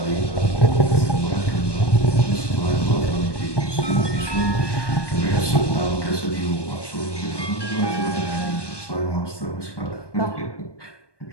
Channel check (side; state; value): right; late; 1.2 ms